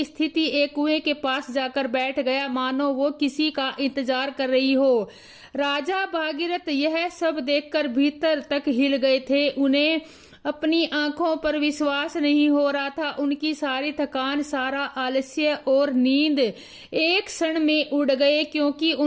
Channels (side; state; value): both; identical; correlation 1.00